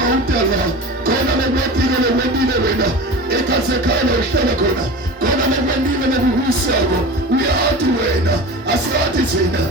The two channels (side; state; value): both; normal; correlation 0.32